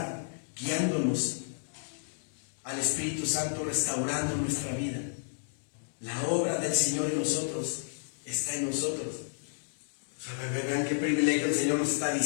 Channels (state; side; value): silent; right; digital silence